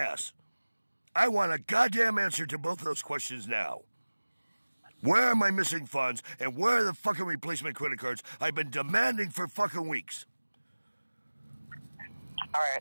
I want a goddamn answer to both of those questions now. Where are my missing funds, and where are the fucking replacement credit cards I've been demanding for fucking weeks? All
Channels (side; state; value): both; inverted; correlation -1.00